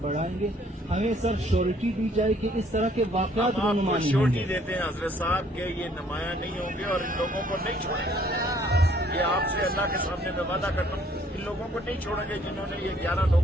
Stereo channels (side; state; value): both; normal; correlation 0.62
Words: بڑھائیں گے. ہمیں سر شیورٹی دی جائے کہ اس طرح کے واقعات رونما نہیں ہوں گے. شیورٹی دیتے ہیں حضرت صاحب کہ یہ نمایاں نہیں ہوں گے اور ان لوگوں کو نہیں چھوڑیں گے. یہ آپ سے اللہ کے سامنے میں وعدہ کرتا ہوں، ان لوگوں کو نہیں چھوڑیں گے جنہوں نے یہ 11